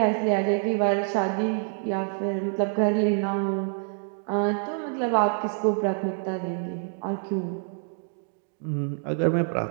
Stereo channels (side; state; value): left; silent; digital silence